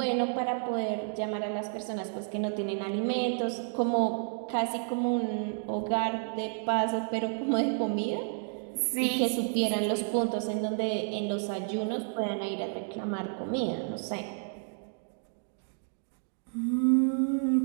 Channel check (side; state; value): left; silent; 57 dB below the other